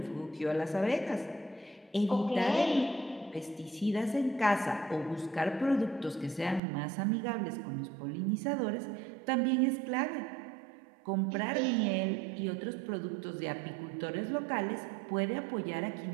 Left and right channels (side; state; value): left; drops out; at 6.6 s